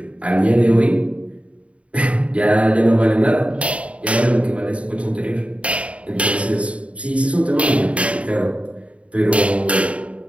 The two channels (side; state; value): left; late; 0.063 ms